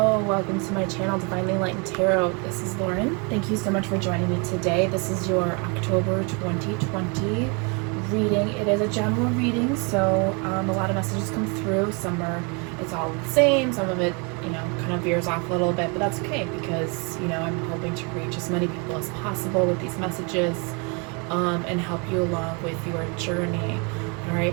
welcome to my channel, Divinely Enlightened Tarot. This is Lauren. Thank you so much for joining me today. This is your October 2020 reading. It is a general reading, so a lot of messages come through. It's all the same. Some of it, kind of veers off a little bit, but that's okay because, I'm hoping to reach as many people as possible with these messages and help you along with your journey. All right,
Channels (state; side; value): quieter; left; 32.9 dB